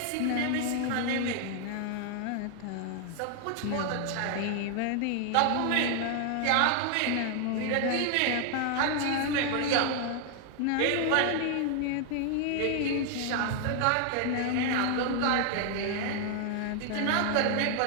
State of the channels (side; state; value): both; different; correlation 0.00